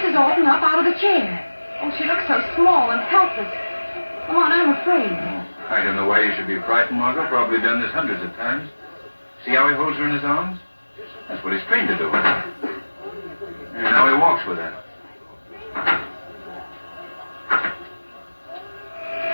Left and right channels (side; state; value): both; inverted; correlation -1.00